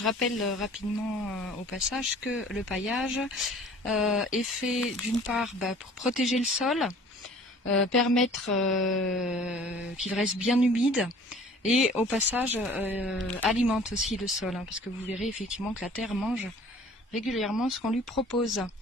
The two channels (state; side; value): normal; both; correlation 0.50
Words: rappelle rapidement au passage que le paillage est fait d'une part pour protéger le sol, permettre qu'il reste bien humide et au passage alimente aussi le sol, parce que vous verrez effectivement que la terre mange régulièrement ce qu'on lui propose.